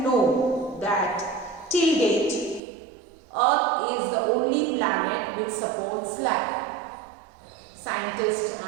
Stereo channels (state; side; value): drops out; left; at 2.6 s